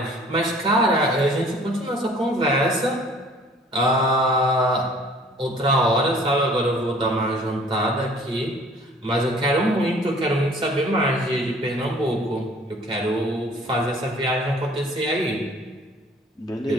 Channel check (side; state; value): both; normal; correlation 0.53